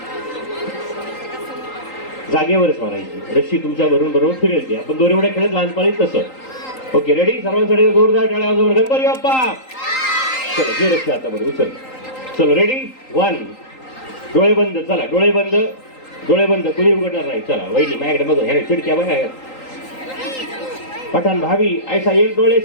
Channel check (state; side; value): late; right; 3.8 ms